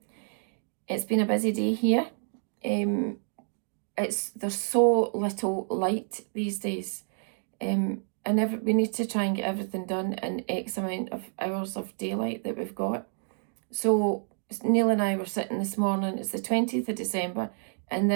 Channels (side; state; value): left; silent; 58 dB below the other